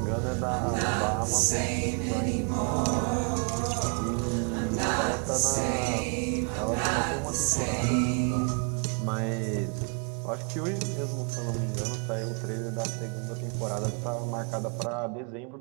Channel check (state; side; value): quieter; left; 39.3 dB